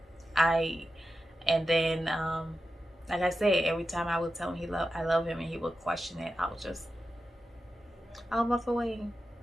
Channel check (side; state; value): both; normal; correlation 0.91